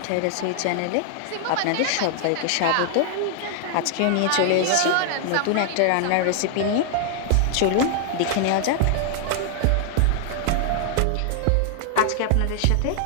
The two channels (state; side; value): different; both; correlation 0.00